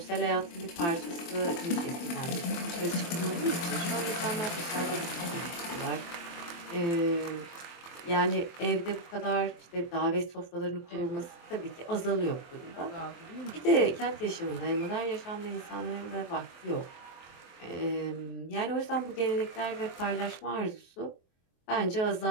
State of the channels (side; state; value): right; late; 23 ms